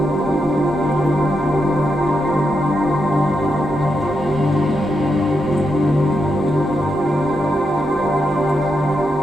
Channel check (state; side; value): normal; both; correlation 0.83